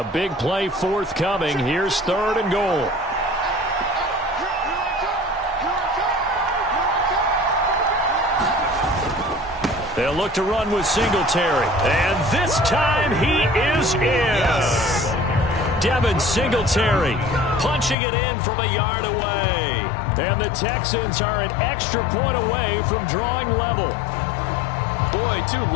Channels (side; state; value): right; drops out; at 17.9 s